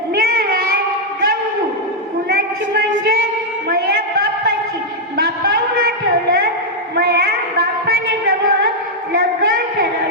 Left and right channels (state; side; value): normal; both; correlation -0.04